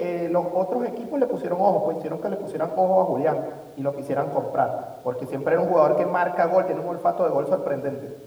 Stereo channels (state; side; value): identical; both; correlation 1.00